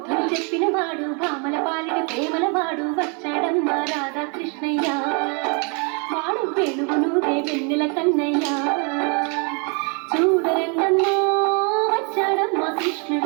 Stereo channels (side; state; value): left; quieter; 35.8 dB